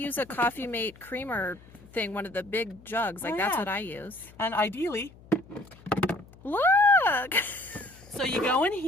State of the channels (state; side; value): noise; left; hum, 23 dB below the sound